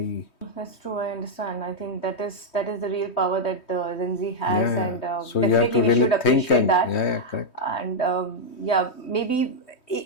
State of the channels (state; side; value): late; right; 3.2 ms